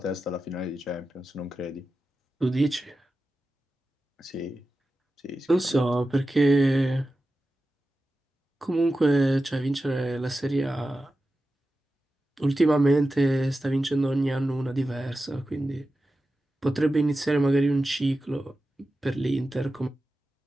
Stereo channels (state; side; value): normal; both; correlation 0.93